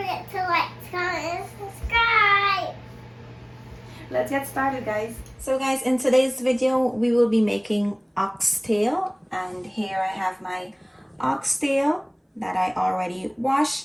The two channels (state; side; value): identical; both; correlation 1.00